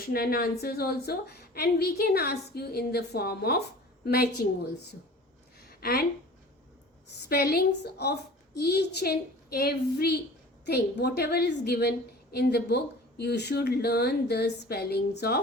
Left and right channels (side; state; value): both; normal; correlation 0.43